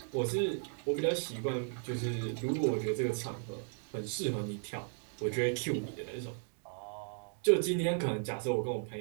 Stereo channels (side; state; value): left; silent; 54 dB below the other